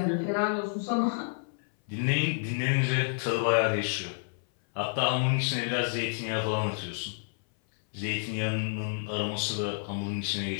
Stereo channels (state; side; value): silent; right; 58 dB below the other